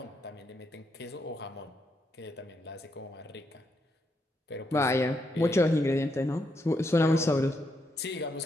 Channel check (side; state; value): both; normal; correlation 0.79